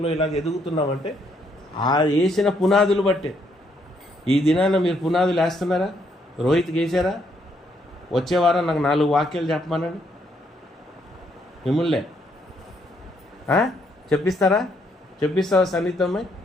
ఇలాగ ఎదుగుతున్నామంటే ఆ వేసిన పునాదులు బట్టే. ఈ దినాన్ని మీరు పునాదులు వేస్తున్నారా? రోహిత్కి వేసారా? వచ్చే వారం నాకు 4 వాక్యాలు చెప్పమనండి, మిమ్మల్నే చెప్పిస్తావా సన్నిహితమ్మాయి?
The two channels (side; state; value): both; normal; correlation 0.72